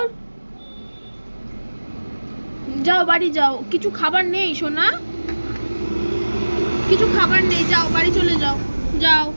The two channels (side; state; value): both; inverted; correlation -1.00